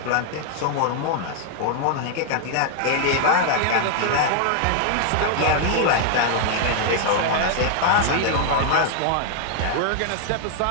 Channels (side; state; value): both; different; correlation 0.00